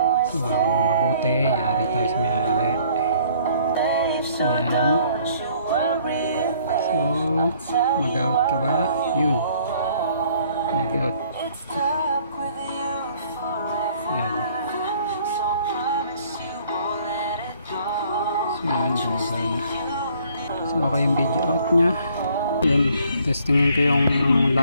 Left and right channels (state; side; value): inverted; both; correlation -0.60